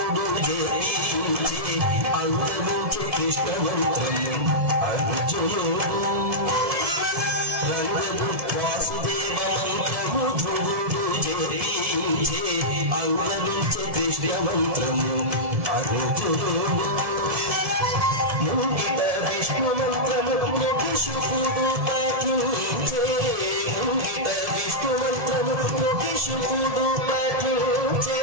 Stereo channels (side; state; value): left; late; 1.7 ms